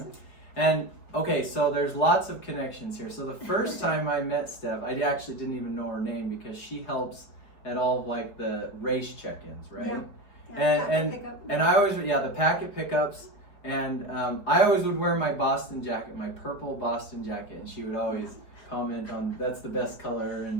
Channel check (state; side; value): late; right; 4.8 ms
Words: And okay, so there's lots of connections here. So the first time I met Steph, I actually didn't even know her name because she helps at all of like the race check-ins, right? Yeah. And I always, the packet pickups, and I always would wear my Boston jacket, my purple Boston jacket, and she would always comment on that's the best color,